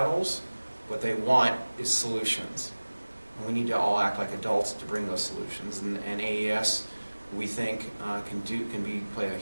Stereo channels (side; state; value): both; inverted; correlation -1.00